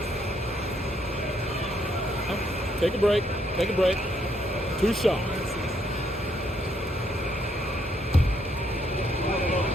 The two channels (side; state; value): both; normal; correlation 0.72